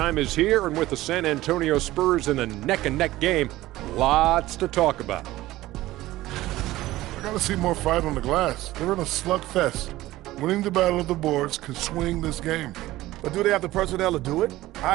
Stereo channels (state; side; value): quieter; left; 16.8 dB